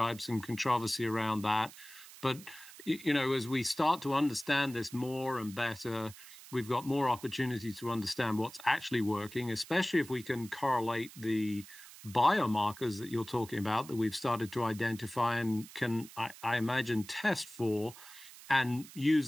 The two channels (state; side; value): noise; right; hiss, 18 dB below the sound